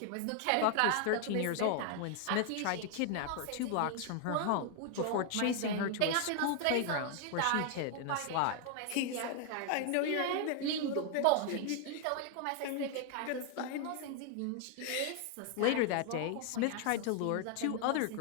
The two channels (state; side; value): different; both; correlation 0.00